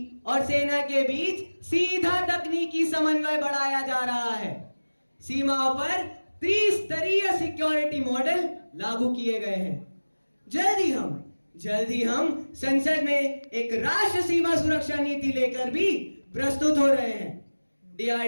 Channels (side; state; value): both; inverted; correlation -1.00